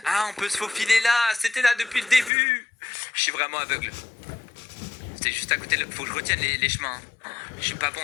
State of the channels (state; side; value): drops out; right; at 2.3 s